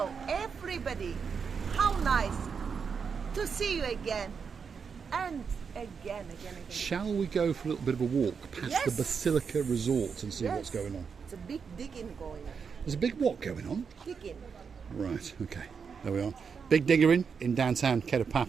everybody. How nice to see you again. And again. Shall we go for a little bit of a walk past the Basilica Resort and see what's going on? It's a big digging going on. There's a big what going on? Digging. Right, okay, there we are. Big diggering in downtown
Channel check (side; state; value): left; quieter; 6.1 dB